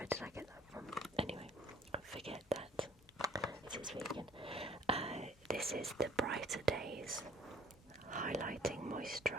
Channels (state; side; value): normal; both; correlation 0.55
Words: did I get that from? Anyway, forget that. It is vegan. This is the Brighter Days Highlighting